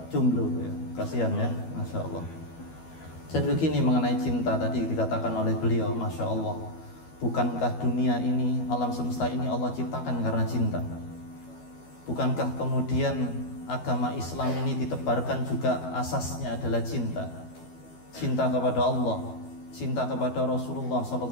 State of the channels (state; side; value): late; right; 12 ms